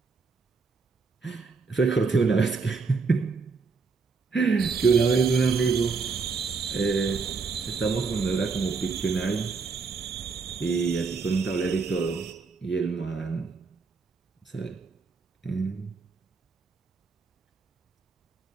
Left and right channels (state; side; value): quieter; left; 4.8 dB